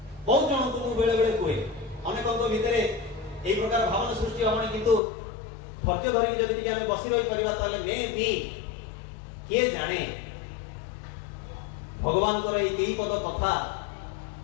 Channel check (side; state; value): right; drops out; at 5.0 s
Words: ବହୁତ ଜଣଙ୍କୁ ମୁଁ ବେଳେ ବେଳେ କୁହେ ଅନେକଙ୍କ ଭିତରେ এই প্রকার ভাবনা সৃষ্টি হবনি কিন্তু ধৈর্য ধরিକି ଯଦି ଟିକେ ଆମେ ବସି ରହି କରିବା ତାହେଲେ ମେ ବି किए जाने भगवान को कई पद कथा